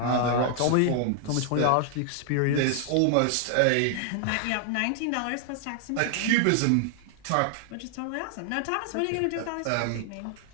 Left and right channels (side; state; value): both; different; correlation 0.00